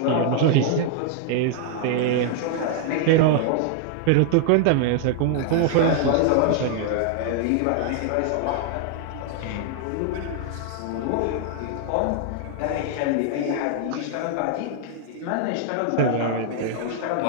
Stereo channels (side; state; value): both; different; correlation 0.00